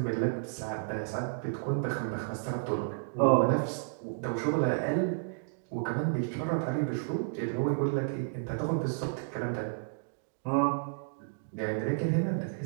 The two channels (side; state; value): left; silent; digital silence